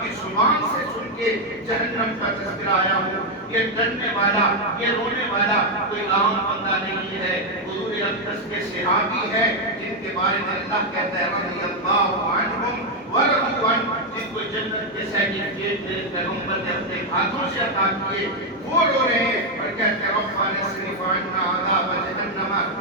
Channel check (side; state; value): both; normal; correlation 0.02